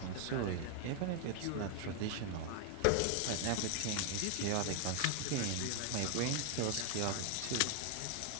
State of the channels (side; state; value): both; different; correlation 0.00